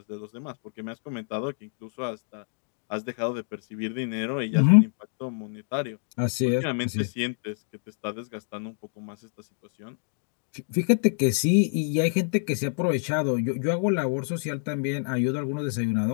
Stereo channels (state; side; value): silent; right; digital silence